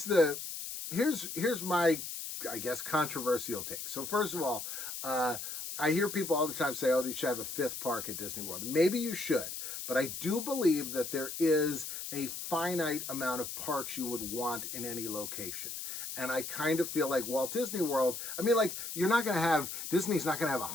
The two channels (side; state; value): left; noise; hiss, 7 dB below the sound